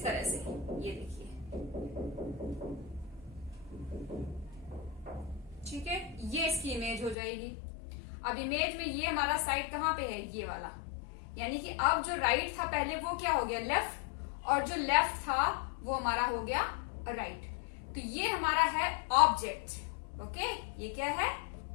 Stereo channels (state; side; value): drops out; right; at 7.2 s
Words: तरह से, ये देखिए, ठीक है, ये इसकी इमेज हो जाएगी। अब इमेज में ये हमारा साइड कहाँ पे है, ये वाला, यानी कि अब जो राइट था पहले वो क्या हो गया लेफ्ट, और जो लेफ्ट था वो हमारा हो गया राइट। तो ये हमारा है ऑब्जेक्ट। ओके, ये क्या है